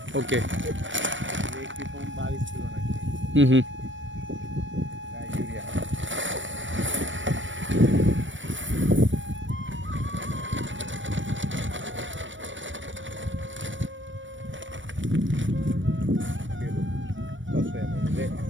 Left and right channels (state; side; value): late; left; 0.56 ms